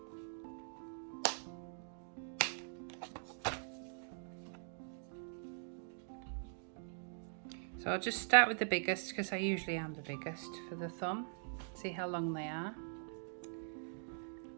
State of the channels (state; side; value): silent; left; digital silence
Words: So I'll just start with the biggest because I usually am the biggest for the thumb. See how long they are.